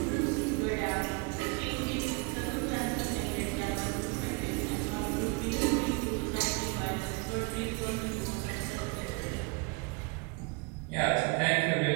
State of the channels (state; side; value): quieter; left; 29.4 dB